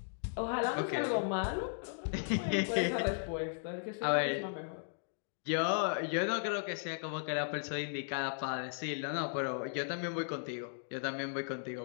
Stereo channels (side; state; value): right; silent; digital silence